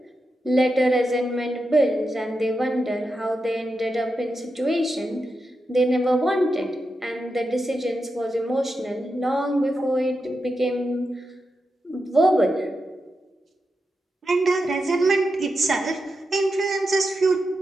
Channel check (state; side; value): normal; both; correlation 0.88